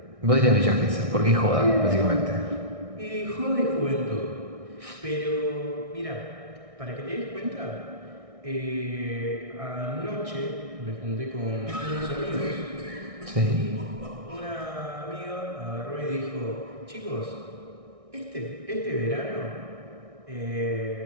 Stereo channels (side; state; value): left; late; 1.6 ms